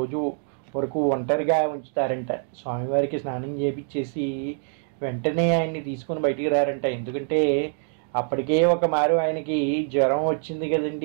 వరకు ఒంటరిగా ఉంచుతారంట. స్వామివారికి స్నానం చేపించేసి వెంటనే ఆయన్ని తీసుకొని బయటికి రారంట. ఎందుకంటే అప్పటికే ఒక మారు ఆయనకి జ్వరం వచ్చింది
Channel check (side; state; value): left; silent; 62 dB below the other